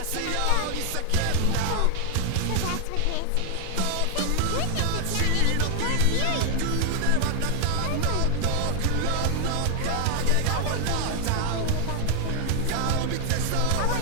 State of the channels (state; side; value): different; both; correlation 0.00